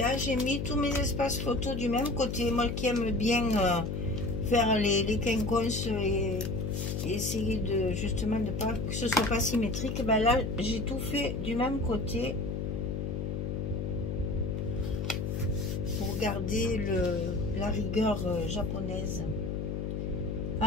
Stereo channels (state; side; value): noise; left; hum, 2 dB below the sound